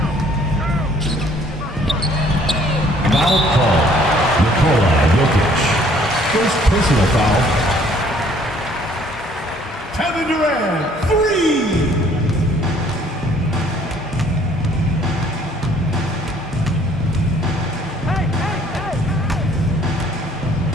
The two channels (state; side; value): normal; both; correlation 0.59